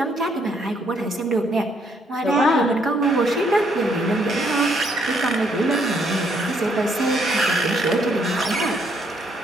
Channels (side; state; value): both; normal; correlation 0.71